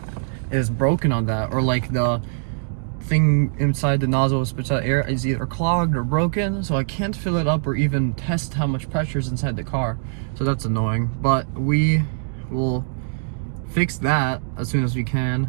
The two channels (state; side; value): silent; left; digital silence